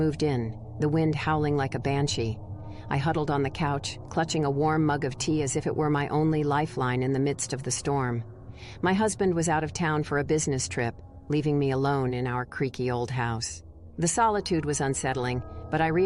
in, the wind howling like a banshee. I huddled on the couch, clutching a warm mug of tea as if it were my only lifeline in the midst of the storm. My husband was out of town for a business trip, leaving me alone in our creaky old house. The solitude was unsettling, but I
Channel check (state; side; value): identical; both; correlation 1.00